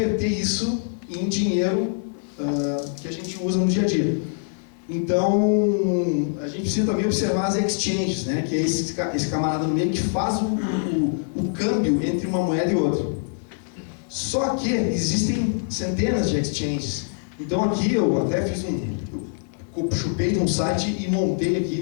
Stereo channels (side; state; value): right; silent; digital silence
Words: isso em dinheiro que a gente usa no dia a dia. Então, a gente precisa também observar as exchanges, né? Que é esse camarada no meio que faz o câmbio entre uma moeda e outra. Só que existem centenas de exchanges. Então aqui eu até fiz eu chupei de um site e montei